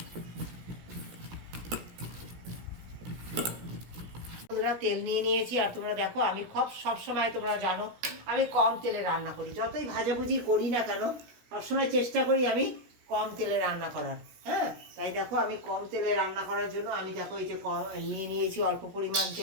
বন্ধুরা, তেল নিয়ে নিয়েছি, আর তোমরা দেখো আমি সবসময় তোমরা জানো আমি কম তেলে রান্না করি। যতই ভাজাভুজি করি না কেন, সবসময় চেষ্টা করি আমি কম তেলে রান্না করার। হ্যাঁ, তাই দেখো আমি কম তেলে রান্না করার জন্য আমি দেখো এই যে নিয়ে নিয়েছি অল্প পরিমাণ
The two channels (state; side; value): late; left; 17 ms